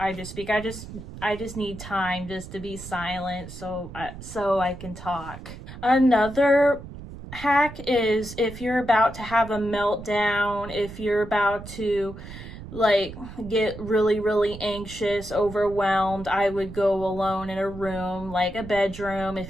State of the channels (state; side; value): noise; right; rumble, 13 dB below the sound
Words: just speak. I just need time just to be silent so I can talk. Another hack is if you're about to have a meltdown, if you're about to get really, really anxious, overwhelmed, I would go alone in a room, like a bedroom.